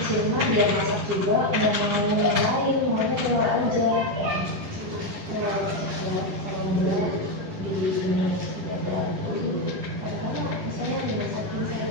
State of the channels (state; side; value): late; left; 10 ms